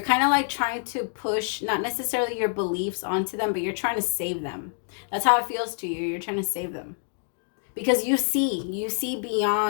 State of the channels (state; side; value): silent; right; 60 dB below the other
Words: kind of like trying to push, not necessarily your beliefs onto them, but you're trying to save them. That's how it feels to you. You're trying to save them. Because you see